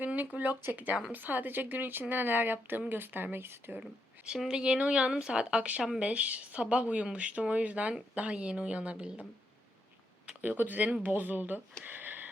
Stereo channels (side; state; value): both; normal; correlation 0.80